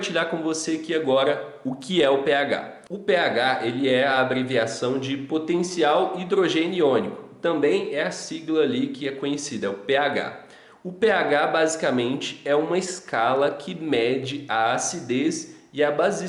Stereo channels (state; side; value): identical; both; correlation 1.00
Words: com você aqui agora o que é o pH. O pH ele é a abreviação de potencial hidrogênio iônico, também é a sigla ali que é conhecida, é o pH. O pH basicamente é uma escala que mede a acidez e a